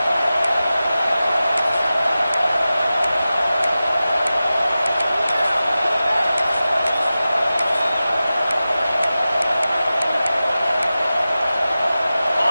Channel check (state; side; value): inverted; both; correlation -0.95